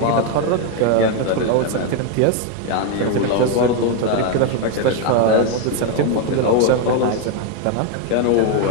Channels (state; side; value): different; both; correlation 0.01